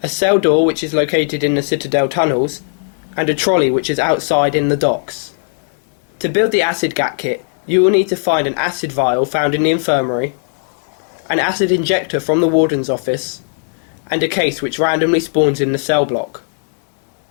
a cell door which is located in the Citadel tunnels, and a trolley which is outside in the docks. To build the acid gat kit, you will need to find an acid vial found in the infirmary, an acid injector from the warden's office, and a case which randomly spawns in the cell block.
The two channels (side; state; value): right; silent; 66 dB below the other